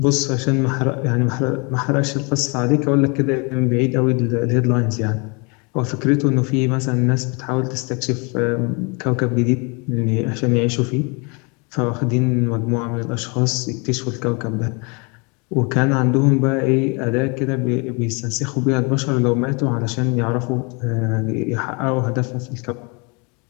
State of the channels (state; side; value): quieter; right; 31.5 dB